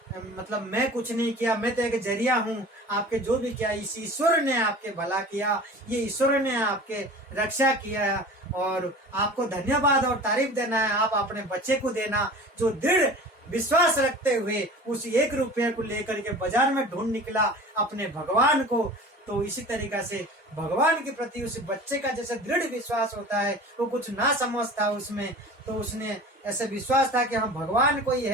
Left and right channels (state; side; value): normal; both; correlation 0.39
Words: मतलब मैं कुछ नहीं किया, मैं तो एक जरिया हूँ। आपके जो भी किया इस ईश्वर ने आपके भला किया, ये ईश्वर ने आपके रक्षा किया और आपको धन्यवाद और तारीफ देना है। आप अपने बच्चे को देना जो दृढ़ विश्वास रखते हुए उस 1 रुपये को लेकर के बाजार में ढूंढ निकला अपने भगवान को। तो इसी तरीका से भगवान के प्रति उस बच्चे का जैसे दृढ़ विश्वास होता है, वो कुछ ना समझता उसमें, तो उसने ऐसे विश्वास था कि हाँ भगवान कोई